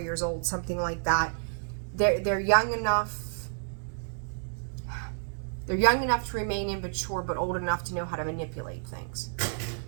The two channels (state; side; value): silent; left; digital silence